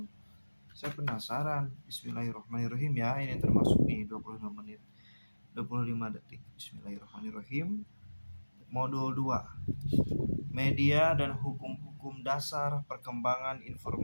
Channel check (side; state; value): both; inverted; correlation -1.00